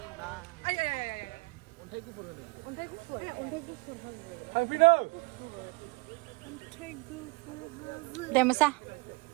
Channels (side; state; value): left; quieter; 26.9 dB